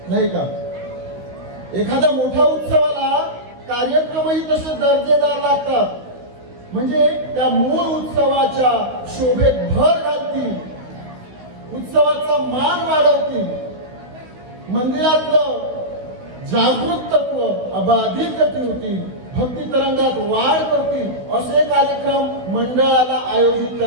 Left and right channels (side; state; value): left; late; 16 ms